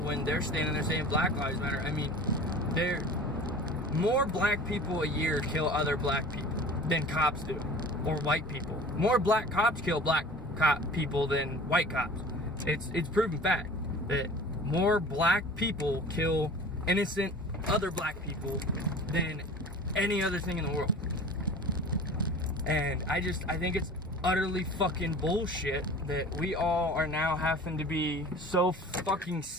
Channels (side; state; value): both; normal; correlation 0.41